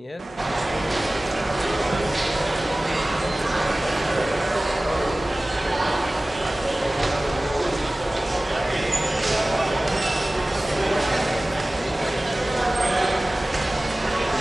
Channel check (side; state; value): both; normal; correlation 0.98